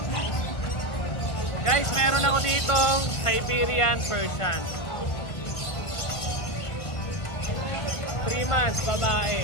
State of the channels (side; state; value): right; late; 1.4 ms